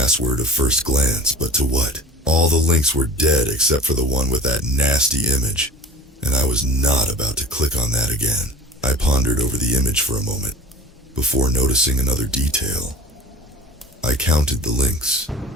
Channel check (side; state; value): both; normal; correlation 0.40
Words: at first glance, but to what? All the links were dead except for the one with that nasty image, and I was not about to click on that again. I pondered over the image for a moment, before noticing another detail. I counted the links,